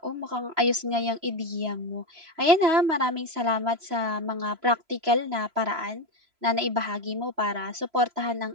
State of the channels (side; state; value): left; late; 3.0 ms